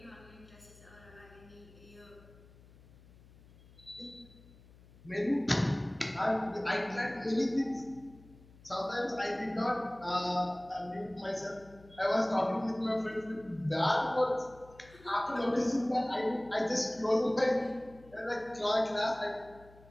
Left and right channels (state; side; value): noise; left; hum, 23 dB below the sound